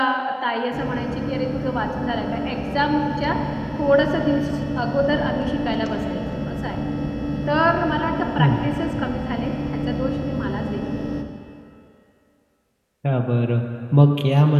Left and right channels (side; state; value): both; identical; correlation 1.00